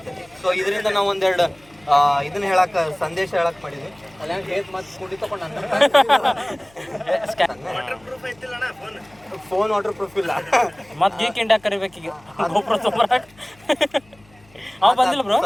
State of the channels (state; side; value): noise; left; hum, 29 dB below the sound